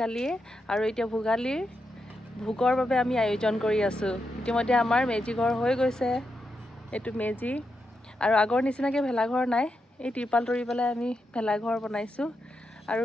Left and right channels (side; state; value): both; normal; correlation 0.85